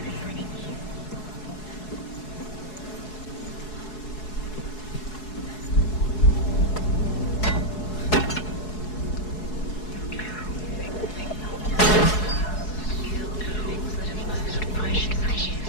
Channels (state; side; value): late; right; 4.7 ms